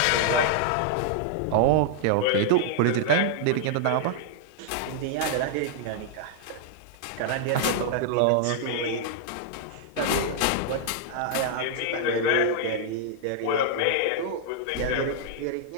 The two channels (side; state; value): both; different; correlation -0.01